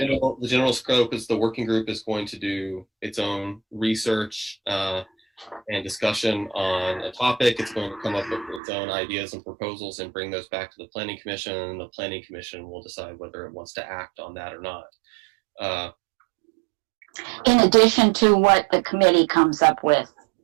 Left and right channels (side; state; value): left; drops out; at 8.6 s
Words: general scope is the working group is going to do its own research and discussion on a topic. It's going to come up with its own ideas and proposals and bring those back to the Planning Commission, and the Planning Commission will decide whether it wants to act on that or not. In addition to what the committee comes up with